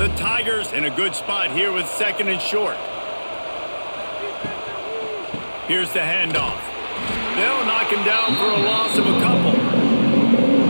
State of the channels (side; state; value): both; inverted; correlation -1.00